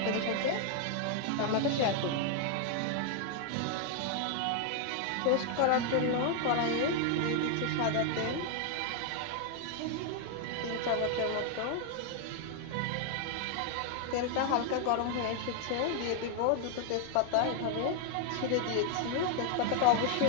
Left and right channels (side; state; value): both; different; correlation 0.00